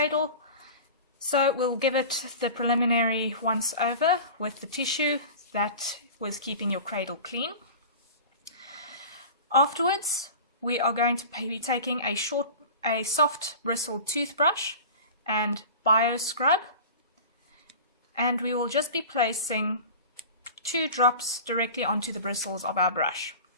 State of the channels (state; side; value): inverted; both; correlation -0.36